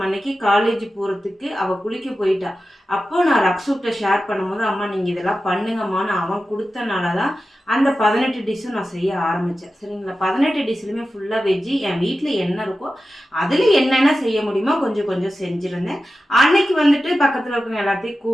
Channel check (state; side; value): normal; both; correlation 0.93